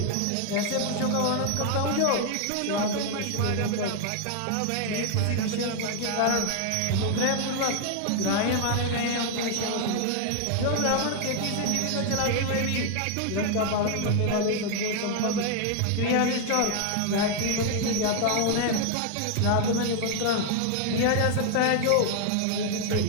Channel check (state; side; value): different; both; correlation 0.00